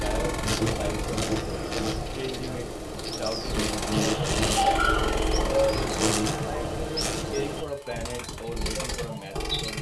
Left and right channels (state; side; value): identical; both; correlation 1.00